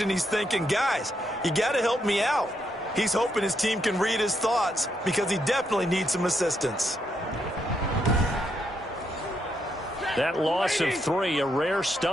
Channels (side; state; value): both; normal; correlation 0.78